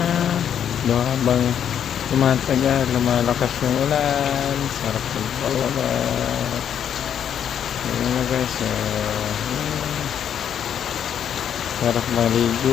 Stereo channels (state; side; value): quieter; right; 9.0 dB